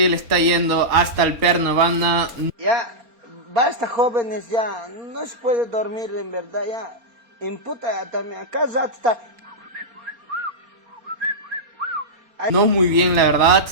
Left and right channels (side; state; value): left; late; 4.3 ms